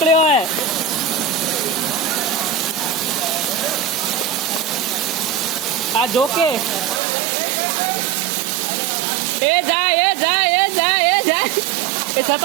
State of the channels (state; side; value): drops out; left; at 7.0 s